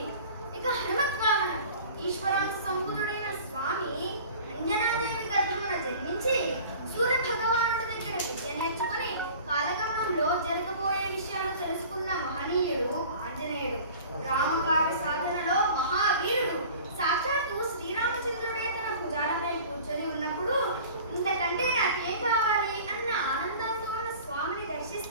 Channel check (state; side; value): inverted; both; correlation -0.43